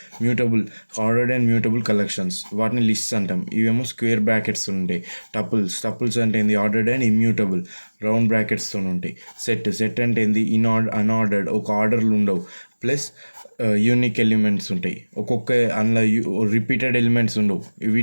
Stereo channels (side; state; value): both; inverted; correlation -1.00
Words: ఆర్డర్డ్ అండ్ మ్యూటబుల్ కలెక్షన్స్, వాటిని లిస్ట్స్ అంటాం. ఇవేమో స్క్వేర్ బ్రాకెట్స్ ఉంటాయి. టపుల్స్ అంటే ఏంది? ఆర్డర్డ్ అండ్ ఇమ్యూటబుల్, రౌండ్ బ్రాకెట్స్తో ఉంటాయి. సెట్ అంటే ఏంది? అన్ఆర్డర్డ్, ఒక ఆర్డర్లు ఉండవు, ప్లస్ యూనిక్ ఎలిమెంట్స్ ఉంటాయి. ఒక్కొక్క అందులో రిపీటెడ్ ఎలిమెంట్స్ ఉండవు.